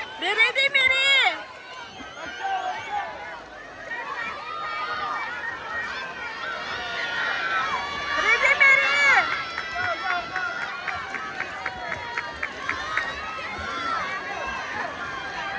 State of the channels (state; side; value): identical; both; correlation 1.00